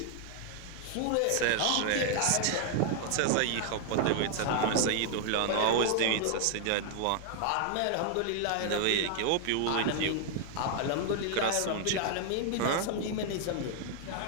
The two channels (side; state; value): both; different; correlation 0.00